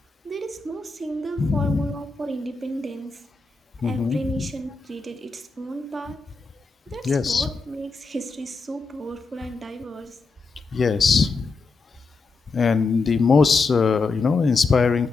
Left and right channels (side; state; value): right; quieter; 4.0 dB